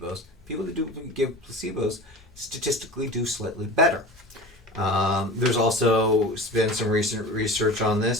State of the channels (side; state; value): both; normal; correlation 0.34